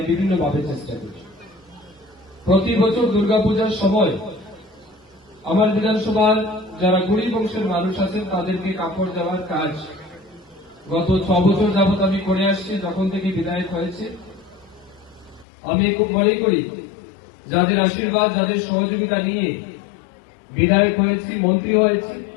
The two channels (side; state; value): right; drops out; at 15.5 s